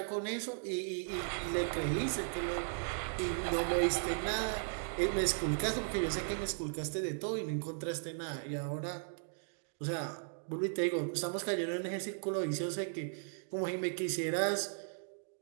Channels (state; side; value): silent; left; digital silence